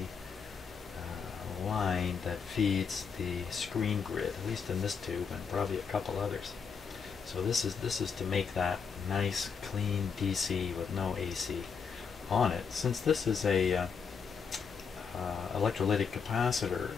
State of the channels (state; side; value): quieter; right; 6.1 dB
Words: line that feeds the screen grid, at least in this tube and probably a couple others. So this is to make that nice clean DC with no AC on it. Since this is a electrolytic capacitor,